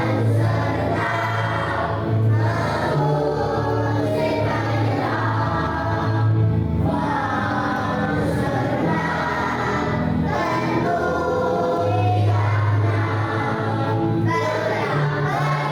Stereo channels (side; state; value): both; identical; correlation 1.00